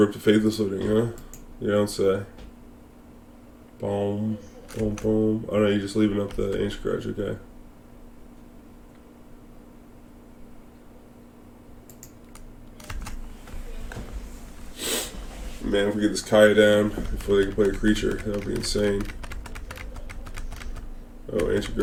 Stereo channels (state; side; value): identical; both; correlation 1.00